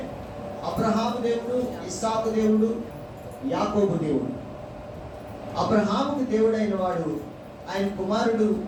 అబ్రహాము దేవుడు, ఇస్సాకు దేవుడు, యాకోబు దేవుడు. అబ్రహాముకు దేవుడైన వాడు ఆయన కుమారుడు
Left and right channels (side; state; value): both; identical; correlation 1.00